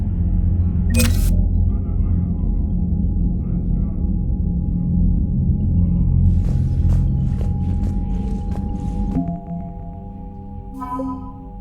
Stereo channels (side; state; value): both; identical; correlation 1.00